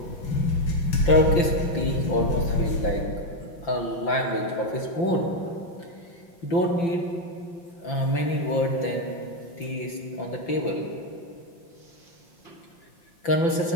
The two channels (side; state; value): right; late; 5.9 ms